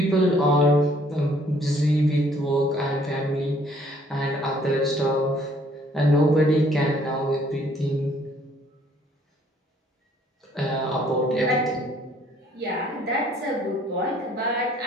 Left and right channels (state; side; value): normal; both; correlation 0.61